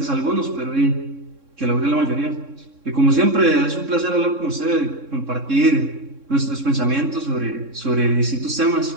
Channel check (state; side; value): late; left; 3.6 ms